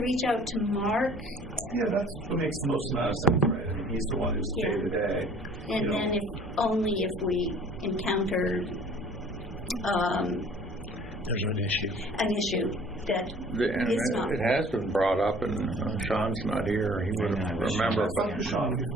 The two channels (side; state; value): both; normal; correlation 0.51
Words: reach out to Mark? Yeah, that's what makes the most amount of sense, right? He's the one who's day to day. And then if we encounter there's an issue that is not. It has been brought up, and Sean's not here. He would remember. But Sean